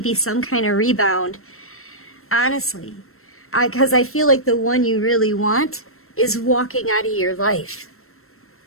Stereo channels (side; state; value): right; late; 0.62 ms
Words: some kind of rebound. Honestly. Because I feel like the one you really want is walking out of your life.